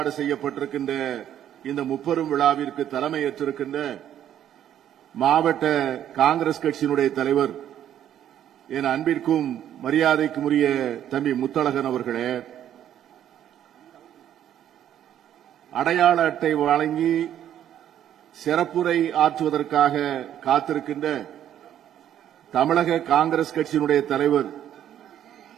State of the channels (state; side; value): quieter; left; 10.7 dB